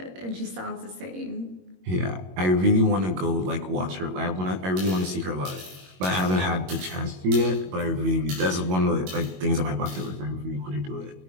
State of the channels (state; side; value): late; left; 22 ms